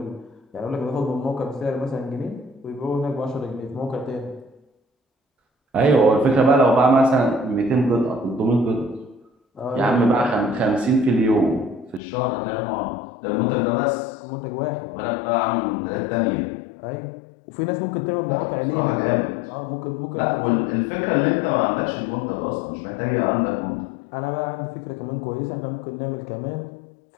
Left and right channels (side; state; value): right; drops out; at 12.0 s